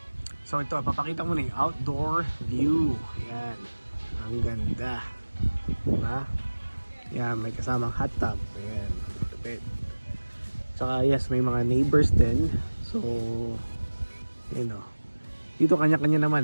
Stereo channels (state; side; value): inverted; both; correlation -1.00